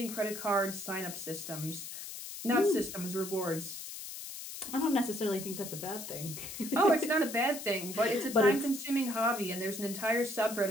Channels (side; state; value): left; noise; hiss, 9 dB below the sound